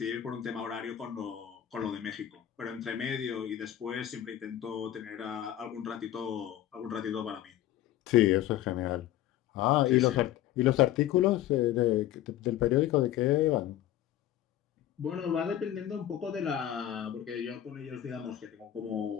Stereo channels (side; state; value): right; quieter; 12.3 dB